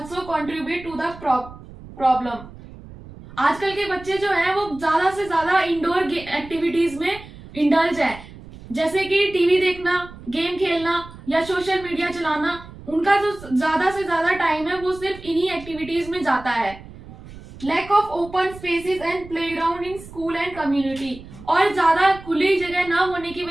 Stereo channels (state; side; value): noise; right; rumble, 17 dB below the sound